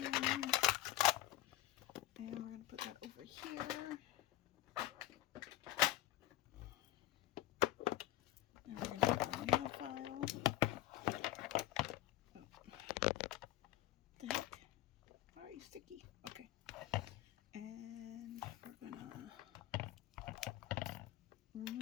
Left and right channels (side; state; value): right; quieter; 14.9 dB